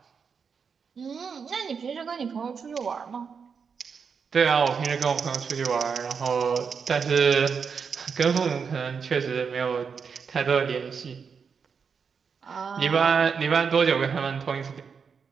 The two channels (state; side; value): quieter; left; 6.1 dB